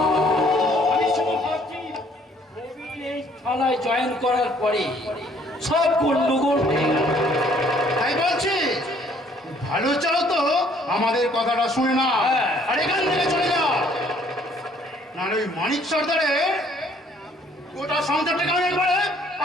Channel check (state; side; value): normal; both; correlation 0.61